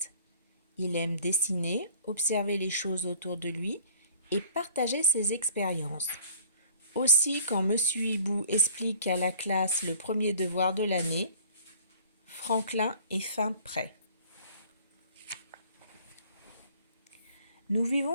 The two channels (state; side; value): inverted; both; correlation -0.52